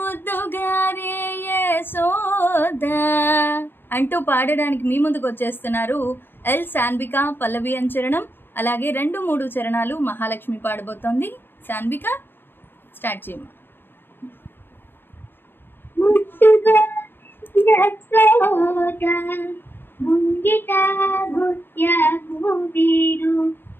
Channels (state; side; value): late; right; 0.098 ms